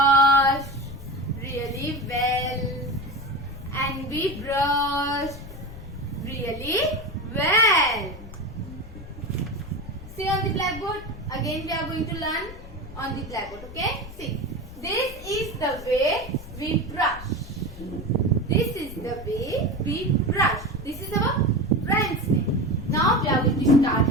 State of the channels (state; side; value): noise; left; rumble, 14 dB below the sound